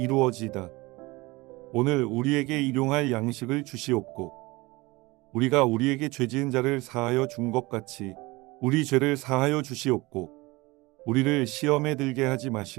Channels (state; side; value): quieter; left; 22.5 dB